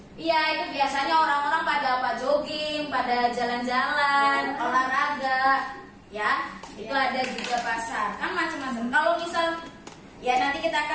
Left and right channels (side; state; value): both; identical; correlation 1.00